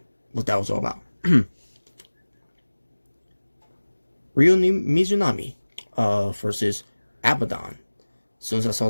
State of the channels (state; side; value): inverted; both; correlation -1.00